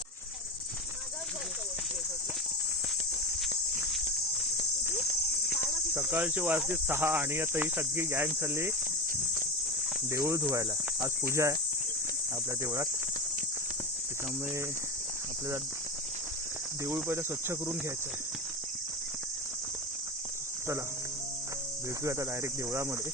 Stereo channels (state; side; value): normal; both; correlation 0.22